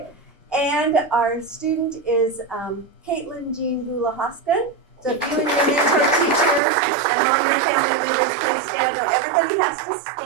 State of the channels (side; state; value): left; drops out; at 6.6 s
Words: And our student is Caitlin Jean Gula-Hoskin. So if you and your mentor teacher and all your family members please stand. No, everybody has to